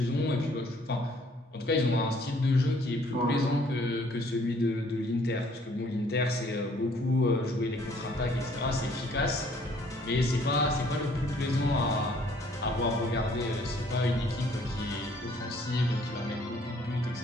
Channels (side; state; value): both; normal; correlation 0.61